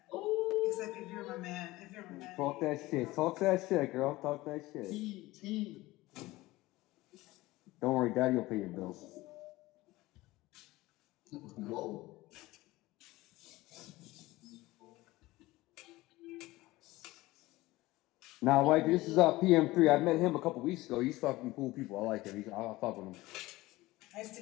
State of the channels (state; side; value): quieter; right; 19.0 dB